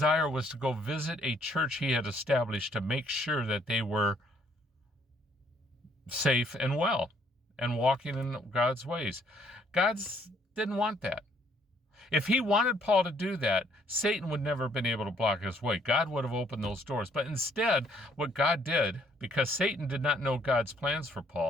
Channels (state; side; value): normal; both; correlation 0.66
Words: was to go visit a church he had established to make sure that they were safe and well and walking in God's ways. God didn't want that. If He wanted Paul to do that, Satan would never have been able to block his way. God would have opened those doors. But instead, what God did, because Satan did not know God's plans for